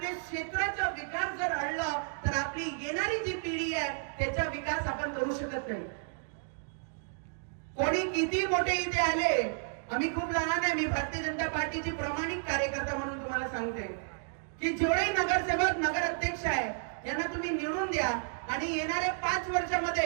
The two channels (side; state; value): left; silent; digital silence